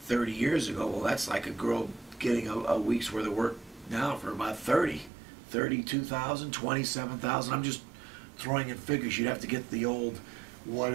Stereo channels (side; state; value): left; drops out; at 5.1 s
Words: years ago. Well, that's like a girl getting a week's worth of work now for about 32,000, 27,000. I'm just throwing in figures. You'd have to get the old, what